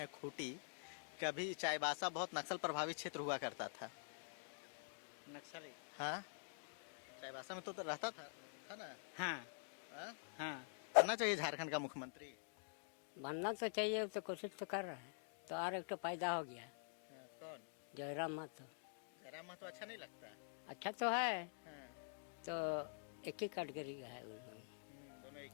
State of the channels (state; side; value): silent; right; digital silence